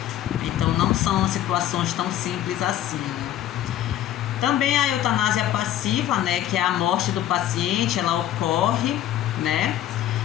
Então não são situações tão simples assim, né? Também a eutanásia passiva, né, que é a morte do paciente, ela ocorre, né,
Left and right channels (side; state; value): right; quieter; 12.2 dB